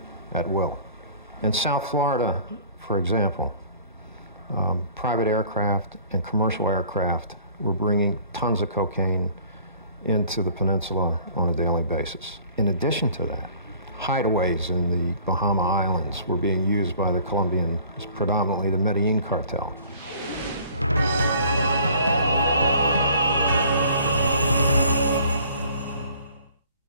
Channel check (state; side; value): inverted; both; correlation -0.52